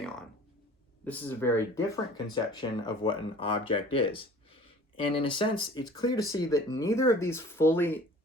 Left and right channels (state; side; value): normal; both; correlation 0.47